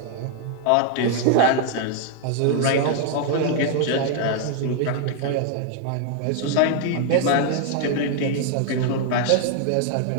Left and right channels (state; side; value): different; both; correlation 0.00